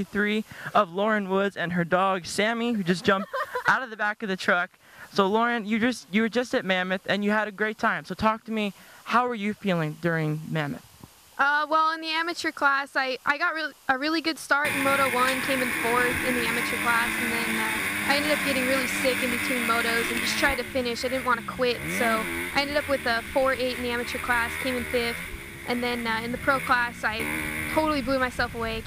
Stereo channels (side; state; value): both; identical; correlation 1.00